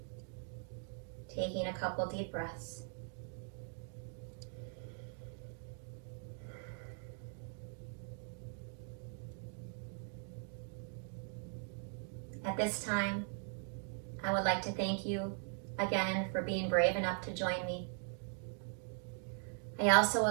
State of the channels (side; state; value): left; silent; 51 dB below the other